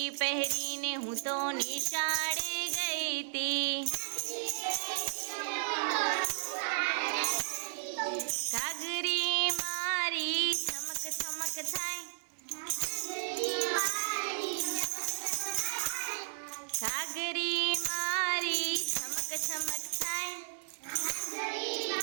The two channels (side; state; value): left; silent; digital silence